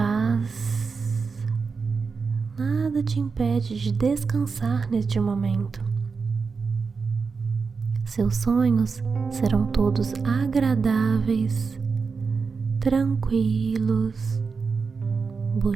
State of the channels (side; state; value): left; quieter; 5.0 dB